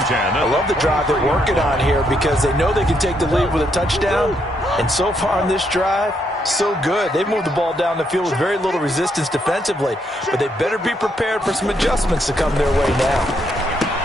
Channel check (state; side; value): normal; both; correlation 0.76